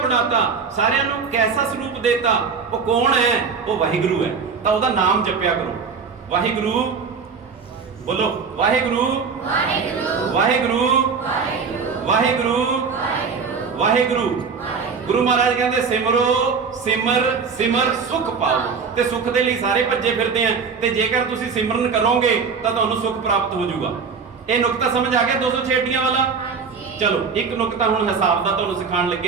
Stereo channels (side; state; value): left; quieter; 5.5 dB